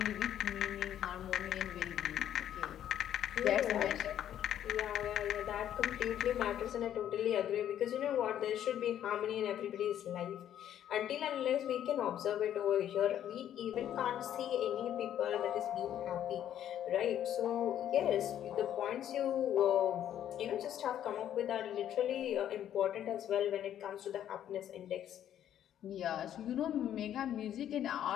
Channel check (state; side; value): quieter; right; 10.7 dB